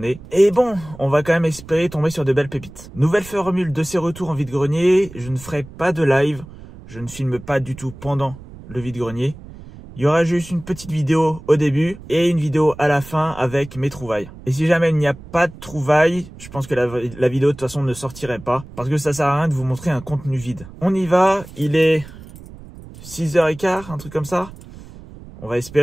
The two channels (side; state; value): right; noise; rumble, 17 dB below the sound